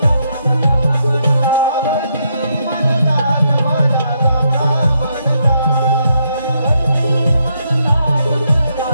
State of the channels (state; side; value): inverted; both; correlation -0.77